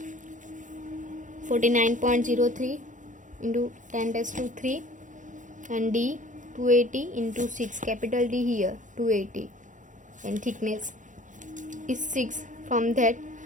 49.03 into 10 raised to 3 and d 280 into 6, capital D here 280, and thickness is 6. From that,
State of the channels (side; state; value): left; late; 0.37 ms